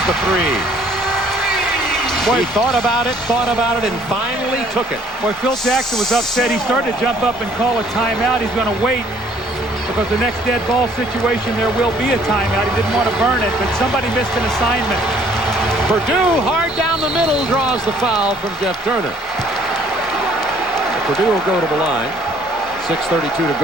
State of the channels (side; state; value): both; normal; correlation 0.60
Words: the 3. Boy, he thought about it, and finally took it. Boy, Phil Jackson was upset. He started to jump up and call a timeout. He's going to wait because the next dead ball situation, there will be a timeout. He didn't want to burn it, but somebody missed an assignment. Purdue, hard down the middle, draws the foul from Jeff Turner. Purdue will go to the line. 6:32 to